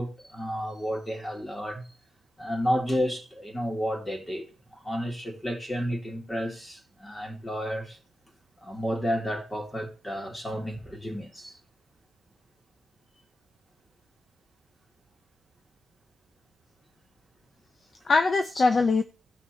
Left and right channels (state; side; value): normal; both; correlation 0.92